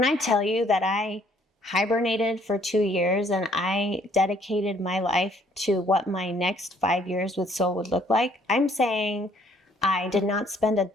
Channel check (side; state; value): both; normal; correlation 0.63